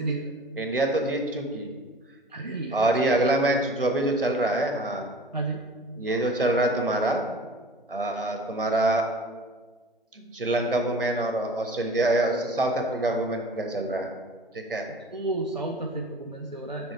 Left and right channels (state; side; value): normal; both; correlation 0.43